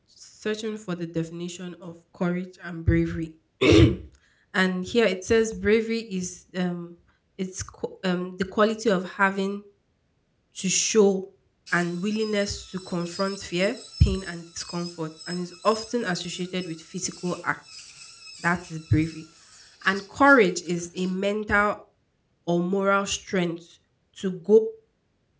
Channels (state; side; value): identical; both; correlation 1.00